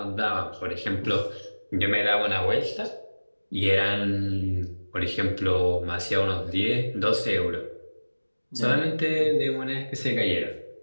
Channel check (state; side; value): inverted; both; correlation -1.00